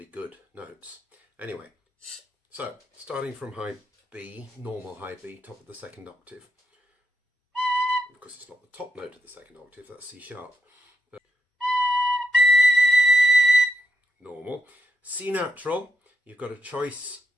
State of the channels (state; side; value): normal; both; correlation 0.81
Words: good notes. Anyway, so starting from high B, normal high B, top of the second octave. Of course, it's not the top note of the second octave, that's C sharp. But normal. C natural, you've got a choice